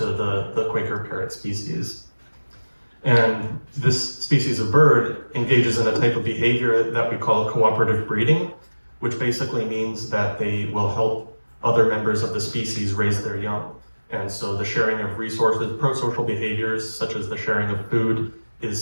the Quaker parrot species. And this species of bird engages in a type of behavior that we call cooperative breeding, which basically means that they will help other members of the species raise their young. And so the sharing of resources, pro-social behaviors, such as the sharing of food, is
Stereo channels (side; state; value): both; inverted; correlation -1.00